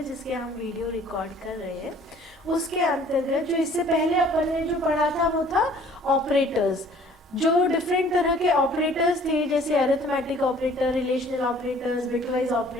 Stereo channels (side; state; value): both; normal; correlation 0.54